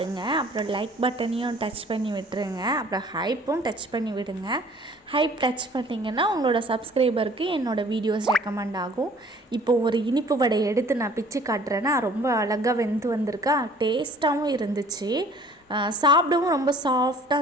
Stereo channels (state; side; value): normal; both; correlation 0.52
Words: அப்புறம் லைக் பட்டனையும் டச் பண்ணி விட்டுருங்க. அப்புறம் ஹைப்பும் டச் பண்ணி விடுங்க. ஹைப் டச் பண்ணிங்கன்னா உங்களோட சப்ஸ்கிரைபருக்கு என்னோடய வீடியோஸ் ரெக்கமெண்ட் ஆகும். இப்போ ஒரு இனிப்பு வடை எடுத்து நான் பிச்சு காட்டுறேன்னா ரொம்ப அழகாக வெந்து வந்திருக்கா. டேஸ்ட்டாகவும் இருந்துச்சு. சாப்பிடவும் ரொம்ப சாஃப்டாக